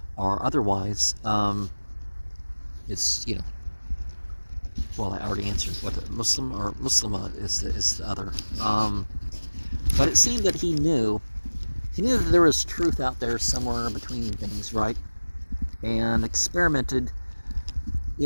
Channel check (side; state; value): both; inverted; correlation -1.00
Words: or otherwise, it's well, I already answered what Muslim or Muslima is the other. But it seemed that he knew that there was truth out there somewhere between things, right? And experimented,